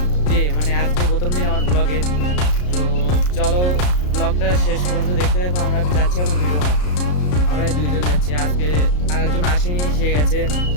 ডে, মানে আজকে প্রথম দিন আমার ব্লগের। তো চলো ব্লগটা শেষ পর্যন্ত দেখতে দেখো। আমরা যাচ্ছি এখন ভিডিও বানাতে, আমরা দুইজন যাচ্ছি। আজকে আরেকজন আসেনি, সে গেছে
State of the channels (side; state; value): right; late; 33 ms